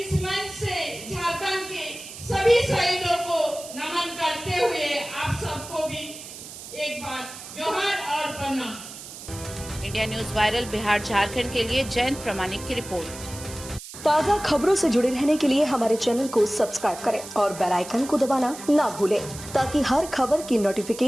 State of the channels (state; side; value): noise; right; hiss, 13 dB below the sound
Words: मंच से झारखंड के सभी शहीदों को नमन करते हुए आप सबको भी एक बार जोहार और प्रणाम। India news viral Bihar Jharkhand के लिए जयंत प्रमाणिक की रिपोर्ट। ताज़ा खबरों से जुड़े रहने के लिए हमारे चैनल को सब्सक्राइब करें और बेल आइकन को दबाना ना भूलें, ताकि हर खबर की